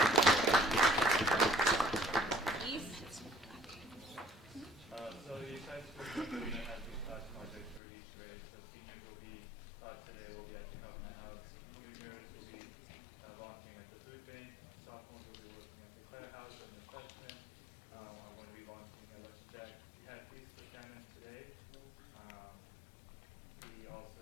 East. So the science community has these class projects for each grade. So seniors will be today will be at the government house. Juniors will be volunteering at the food bank. Sophomores will be working at the Clare House, and the freshmen are going to be volunteering at Lunch Jack. We had Feast for Famine today. We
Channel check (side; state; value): right; drops out; at 7.8 s